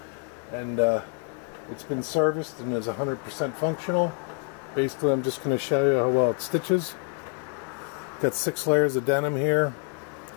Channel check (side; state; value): right; quieter; 39.4 dB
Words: and it's been serviced and is 100% functional. Basically, I'm just going to show you how well it stitches. Got 6 layers of denim here,